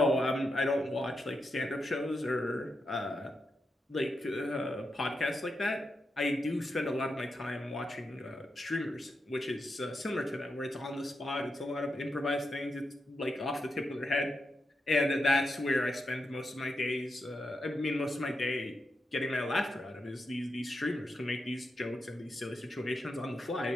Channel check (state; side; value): normal; both; correlation 0.86